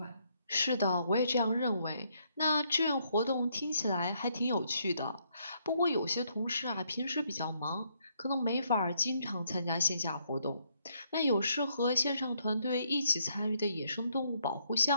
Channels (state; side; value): inverted; both; correlation -0.72